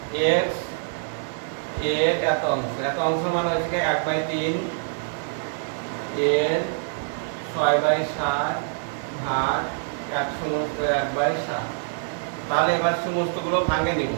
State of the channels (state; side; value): silent; left; digital silence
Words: x এর এত অংশ মানে হচ্ছে 1/3 এর 6/7 ভাগ 1 সমস্ত 1/7। তাহলে এবার সমস্তগুলো ভাঙে নিব।